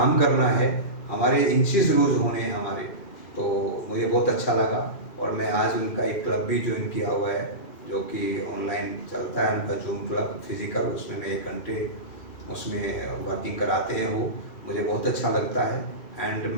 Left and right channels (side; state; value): right; late; 2.4 ms